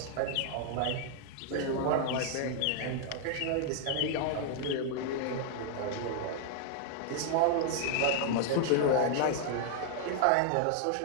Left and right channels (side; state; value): both; different; correlation 0.00